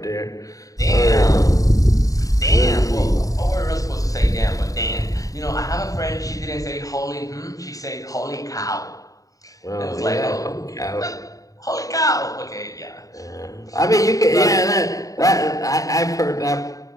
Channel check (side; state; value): right; late; 0.17 ms